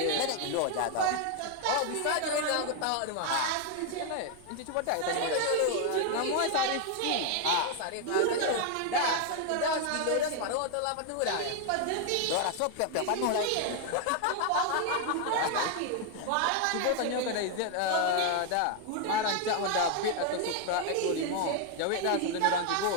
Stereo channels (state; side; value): different; both; correlation 0.00